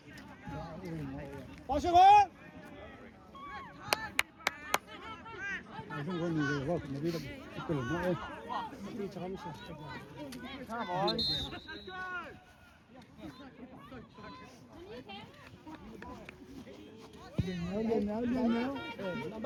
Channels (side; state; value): both; identical; correlation 1.00